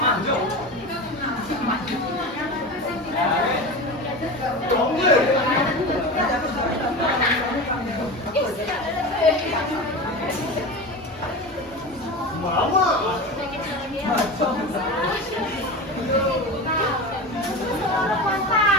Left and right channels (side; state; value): both; normal; correlation 0.27